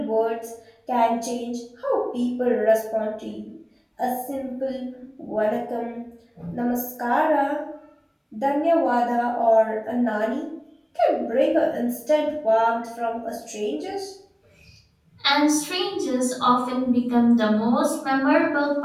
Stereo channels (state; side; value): identical; both; correlation 1.00